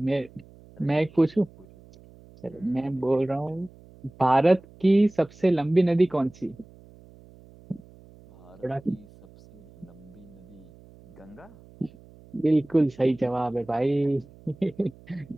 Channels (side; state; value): right; noise; hum, 24 dB below the sound